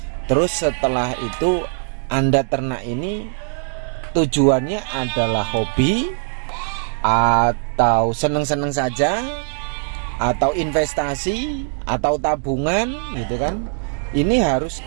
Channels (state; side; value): silent; left; 65 dB below the other